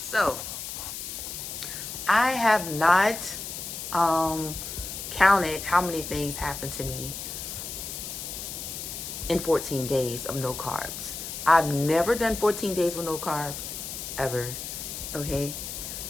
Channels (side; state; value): left; noise; hiss, 7 dB below the sound